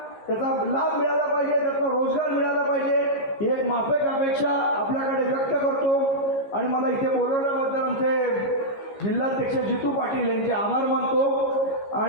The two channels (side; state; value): right; late; 15 ms